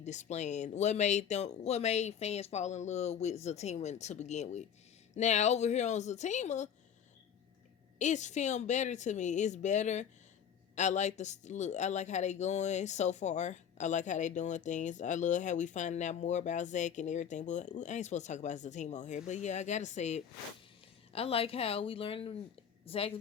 What made fans fall in love with Zatima to begin with. Now over here on Zatima, it's filmed better to me. It's better. I like the look. I like how they going so far. I like how they doing things. I love how we finding out more about Zach and everything. But I ain't supposed to talk about Zatima on here. But yeah, I gotta say it. I like how we learned Zach's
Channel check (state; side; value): quieter; right; 8.3 dB